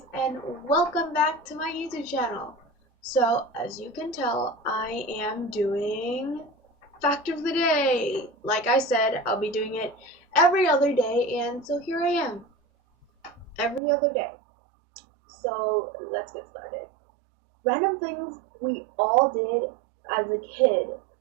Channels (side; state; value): left; drops out; at 13.8 s